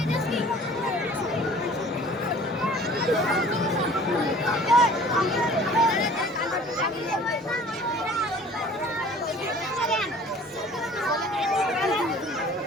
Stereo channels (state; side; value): normal; both; correlation 0.49